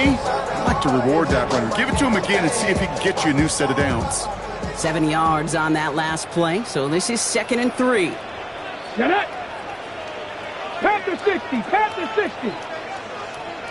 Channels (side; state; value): both; identical; correlation 1.00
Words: I like to reward that runner. Give it to him again and see if he can get you a new set of downs. 7 yards on that last play, so this is 2nd and 3. Get it! Panther 60, Panther 60.